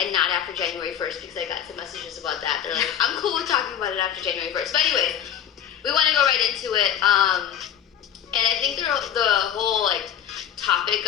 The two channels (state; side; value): quieter; right; 9.7 dB